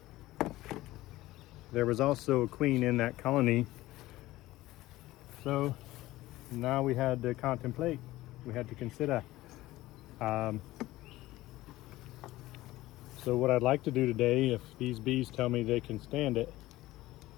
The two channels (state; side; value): quieter; right; 17.2 dB